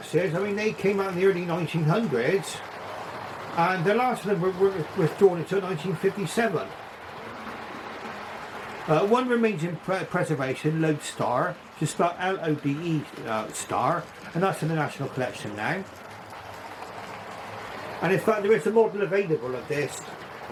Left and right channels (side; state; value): both; identical; correlation 1.00